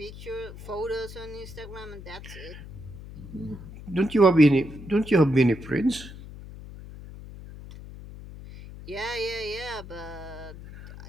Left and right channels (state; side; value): noise; left; hum, 14 dB below the sound